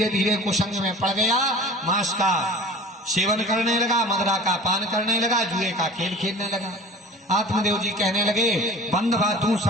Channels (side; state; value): both; normal; correlation 0.40